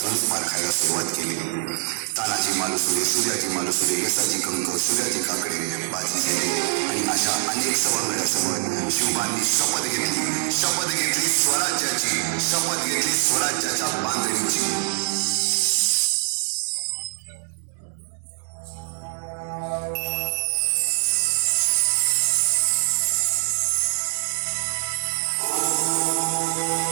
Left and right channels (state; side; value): silent; left; digital silence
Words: पारखायला सुरुवात केली. तानाजी मालुसरे, सूर्याजी मालुसरे, यसाजी कंक, सूर्याजी काकडे, बाजी शेरे आणि अशा अनेक सवंगड्यासमोर शिवबांनी शपथ घेतली स्वराज्याची, शपथ घेतली स्वराज्याच्या बांधणीची.